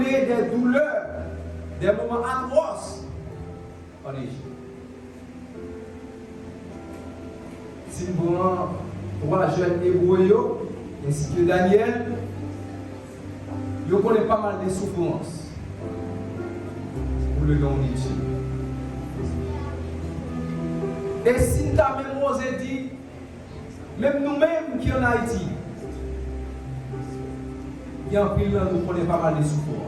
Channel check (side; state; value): both; identical; correlation 1.00